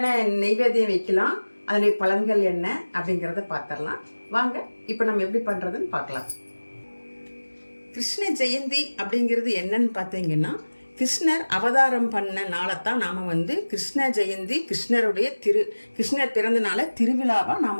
நெய்வேத்தியம் வைக்கலாம், அதனுடைய பலன்கள் என்ன அப்படிங்கிறத பார்த்துடலாம். வாங்க இப்போ நம்ம எப்படி பண்றதுன்னு பார்க்கலாம். கிருஷ்ண ஜெயந்தி அப்படிங்கிறது என்னன்னு பார்த்தீங்கன்னா, கிருஷ்ணர் அவதாரம் பண்ண நாளைத்தான் நாம் கிருஷ்ண ஜெயந்தி, கிருஷ்ணர் பிறந்த நாளை திருவிழாவாக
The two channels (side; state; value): both; inverted; correlation -1.00